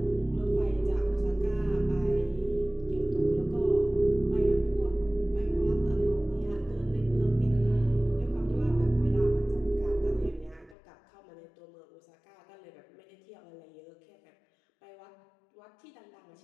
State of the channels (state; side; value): drops out; right; at 10.8 s